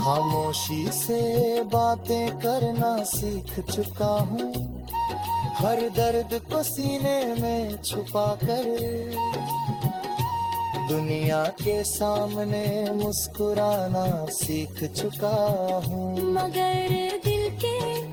से बातें करना सीख चुका हूँ। हर दर्द को सीने में छुपा कर दुनिया के सामने मुस्कुराना सीख चुका हूँ। मगर दिल के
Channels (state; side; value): identical; both; correlation 1.00